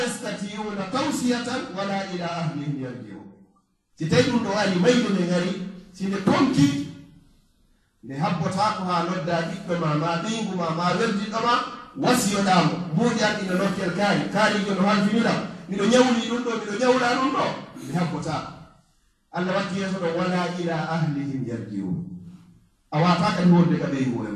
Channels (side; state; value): both; identical; correlation 1.00